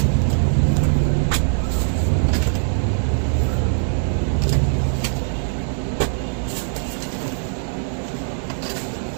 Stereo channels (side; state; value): left; silent; digital silence